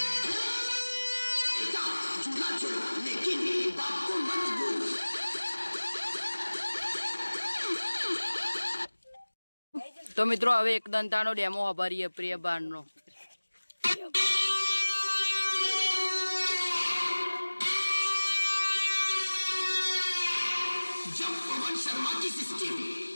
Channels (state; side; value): inverted; both; correlation -1.00